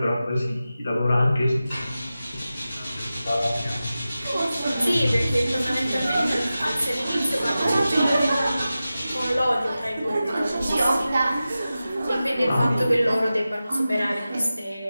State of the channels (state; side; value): inverted; both; correlation -0.94